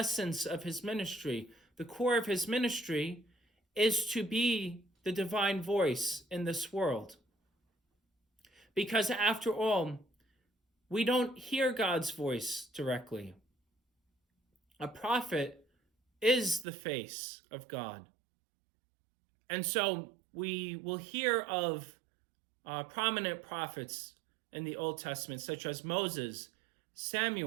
of his ministry. The core of his ministry is to be the divine voice in this world. Because after all, we don't hear God's voice directly. a prophet is the face of God. And so we will hear of prominent prophets in the Old Testament, such as Moses,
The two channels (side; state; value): left; drops out; at 16.7 s